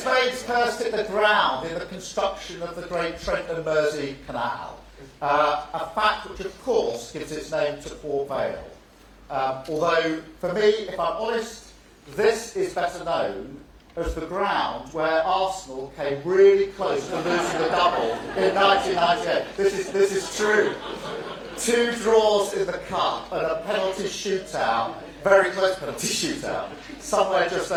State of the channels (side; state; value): both; identical; correlation 1.00